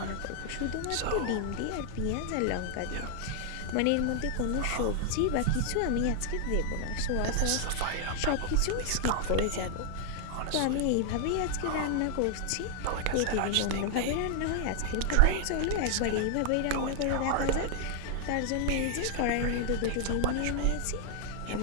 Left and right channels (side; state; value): both; different; correlation 0.00